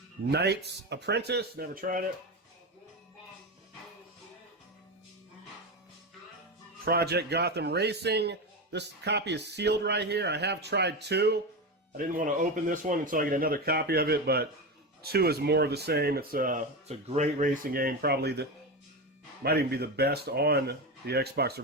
Knight's Apprentice. Never tried it. Project Gotham Racing. This copy is sealed right here. I have tried 2. I didn't want to open this one until I get another copy of it, but 2 is more of the same. It's a great racing game. Probably might even be the best on the Xbox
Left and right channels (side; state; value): both; normal; correlation 0.18